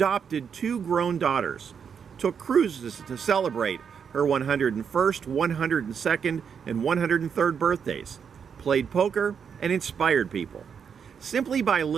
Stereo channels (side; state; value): left; quieter; 7.0 dB